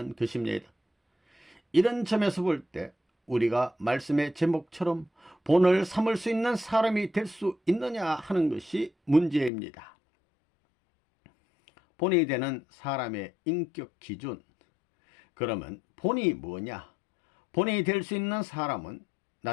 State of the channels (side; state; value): right; drops out; at 9.5 s